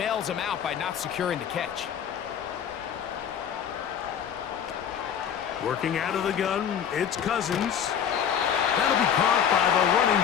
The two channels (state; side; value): quieter; right; 8.4 dB